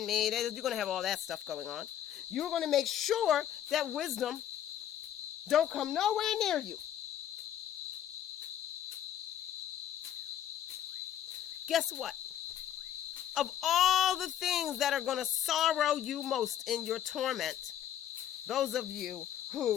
me. You're going to have all that stuff going on. You're going to make sure that wisdom don't come nowhere near you. Guess what? Of all the things that are going to sorrow you most in your torment, those of you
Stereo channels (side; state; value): right; quieter; 10.8 dB